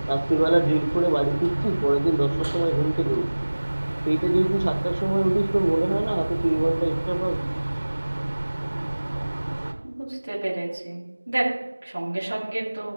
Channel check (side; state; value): both; inverted; correlation -1.00